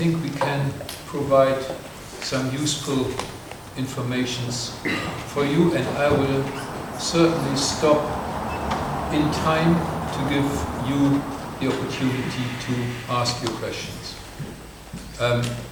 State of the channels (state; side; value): identical; both; correlation 1.00